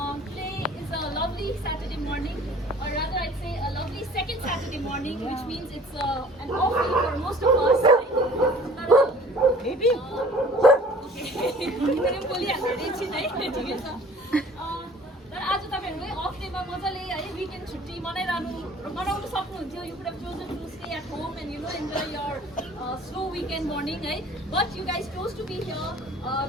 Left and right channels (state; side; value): normal; both; correlation 0.49